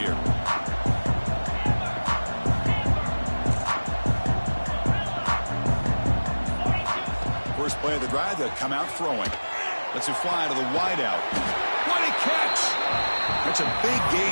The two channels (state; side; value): inverted; both; correlation -1.00